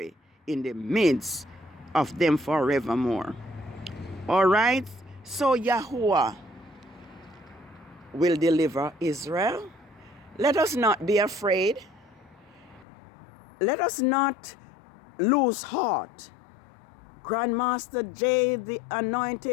in the midst of them forevermore. All right. So Yahuwah will deliver Israel. Let us not be afraid. Let us not lose heart. Grandmaster J, the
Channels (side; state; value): right; drops out; at 12.9 s